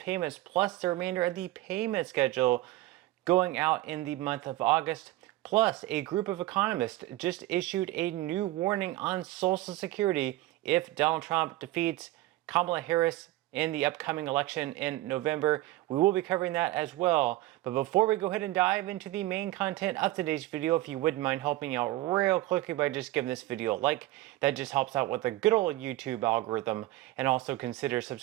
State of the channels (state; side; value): quieter; left; 17.1 dB